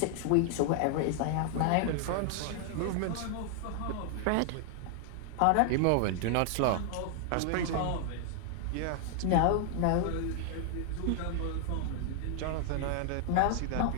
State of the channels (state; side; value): different; both; correlation 0.00